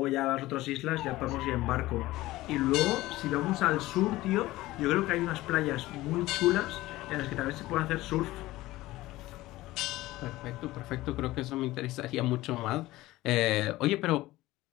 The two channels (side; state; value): right; quieter; 17.7 dB